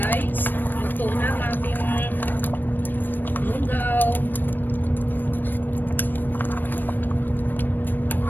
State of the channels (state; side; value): late; right; 0.092 ms